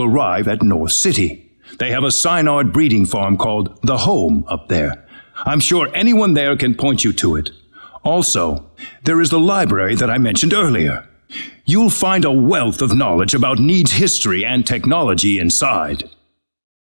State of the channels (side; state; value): both; inverted; correlation -1.00